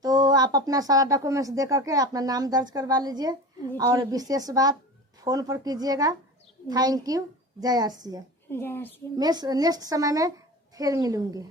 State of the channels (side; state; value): both; normal; correlation 0.32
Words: तो आप अपना सारा डॉक्यूमेंट्स दे करके अपना नाम दर्ज करवा लीजिए और विशेष बात फोन पर कीजिएगा। Thank you. जय आर सी एम। जय आर सी एम। नेक्स्ट समय में फिर मिलूंगी।